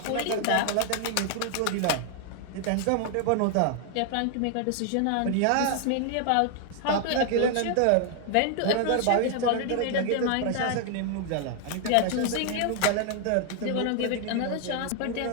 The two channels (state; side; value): different; both; correlation 0.00